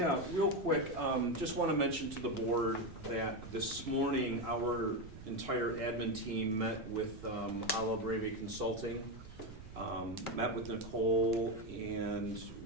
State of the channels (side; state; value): right; noise; rumble, 15 dB below the sound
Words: real quick, just want to mention to the board that this morning, our entire admin team met with Ala Breve Consulting, met with Nicole, and